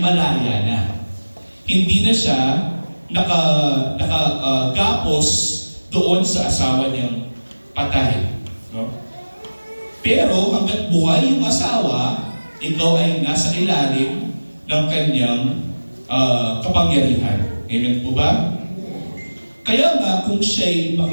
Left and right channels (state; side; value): inverted; both; correlation -1.00